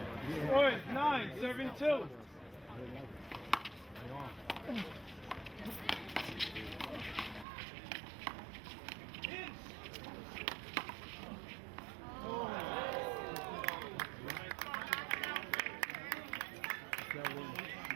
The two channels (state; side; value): drops out; left; at 7.5 s